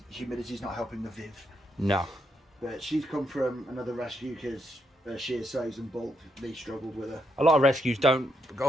humidity's not helping the Viv. No. But she's come from another rescue because her sheer size and bulk, they struggled with her. A lot of rescues don't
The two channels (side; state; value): both; normal; correlation 0.79